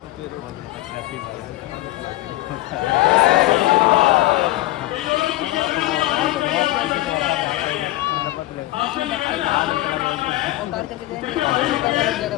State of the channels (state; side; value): quieter; right; 17.2 dB